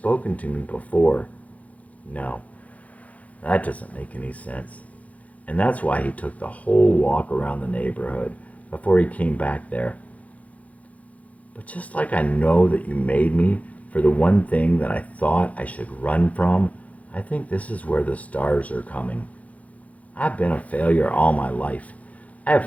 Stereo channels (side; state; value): right; late; 0.069 ms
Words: to me before. No, that doesn't make any sense. And that's why he took the whole walk around the neighborhood before he came back there. But just like I know that you made me for the one thing that I thought I should run from, I think this is where the stars are coming. I've been a failure all my life. I